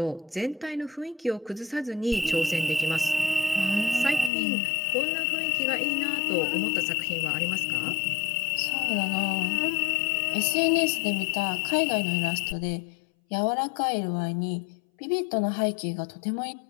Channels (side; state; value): right; drops out; at 4.3 s